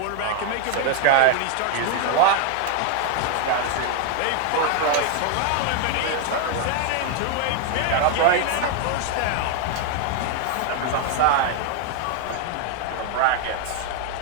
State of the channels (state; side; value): different; both; correlation 0.00